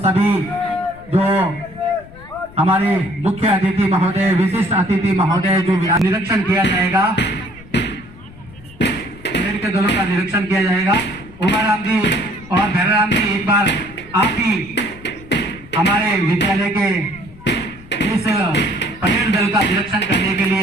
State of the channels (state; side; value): noise; left; rumble, 20 dB below the sound